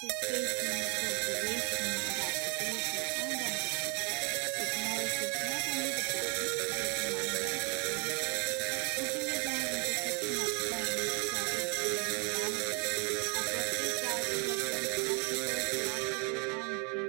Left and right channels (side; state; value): left; quieter; 33.1 dB